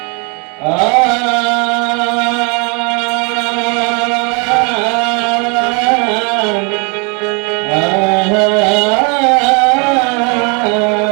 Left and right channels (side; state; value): left; quieter; 33.7 dB